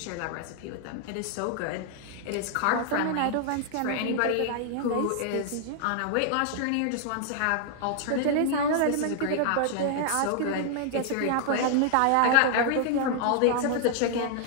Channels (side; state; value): both; different; correlation 0.00